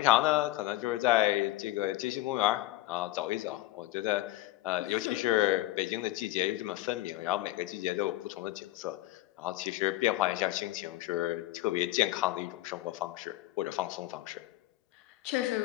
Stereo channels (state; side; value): quieter; right; 16.8 dB